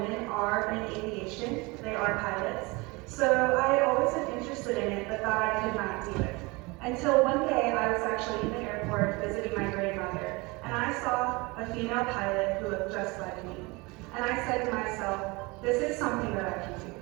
are in aviation. They are pilots. So I always been interested in it, but thought I could not do it. Until one day, I was actually in the airport visiting my grandmother, and I saw a female pilot who looked just like me. And I said to myself, this is something that I can do.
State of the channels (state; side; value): quieter; left; 25.3 dB